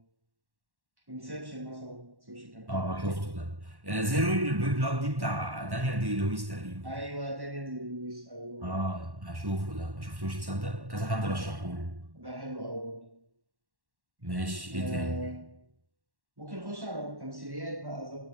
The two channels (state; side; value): late; left; 1.1 ms